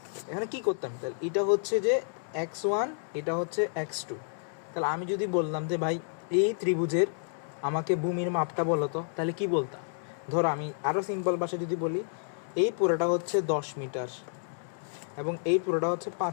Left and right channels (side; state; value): right; silent; digital silence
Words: এখানে কি করতাম? তাহলে এটা হচ্ছে যে x1, এটা হচ্ছে x2। তাহলে আমি যদি বললাম যে ভাই এই ত্রিভুজের আমাকে ভূমির মাপটা বলো তো, তাহলে কি বলতাম? ধরো আমি আরও সিম্পল ভাষায় যদি বলি, এই পুরোটা হচ্ছে 10 মিটার এবং এই পুরোটা হচ্ছে